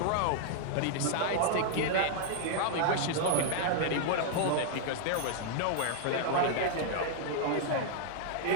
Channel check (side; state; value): both; different; correlation 0.00